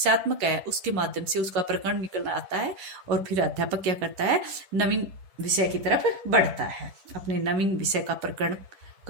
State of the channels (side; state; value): left; late; 10 ms